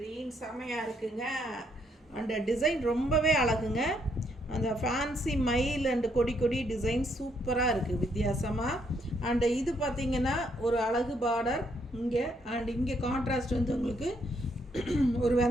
செமையாக இருக்குங்க. அந்த டிசைன் ரொம்பவே அழகுங்க. அந்த ஃபேன்சி மயில் அண்ட் கொடி கொடி டிசைன் சூப்பராக இருக்குது வித்தியாசமாக. அண்ட் இது பார்த்திங்கன்னா ஒரு அழகு பார்டர் இங்கே. அண்ட் இங்கே கான்ட்ராஸ்ட் வந்து உங்களுக்கு ஒரு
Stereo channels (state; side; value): normal; both; correlation 0.72